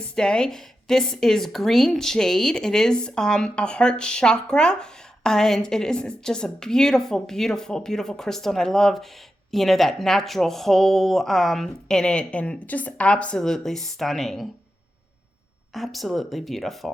Day. This is green jade. It is a heart chakra, and it is just a beautiful, beautiful, beautiful crystal. And I love, that natural hole in it, and just absolutely stunning. Absolutely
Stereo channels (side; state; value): both; normal; correlation 0.89